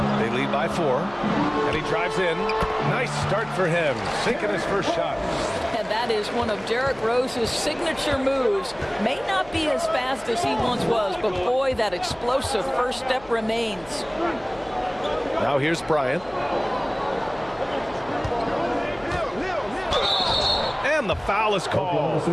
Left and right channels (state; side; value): noise; left; hum, 22 dB below the sound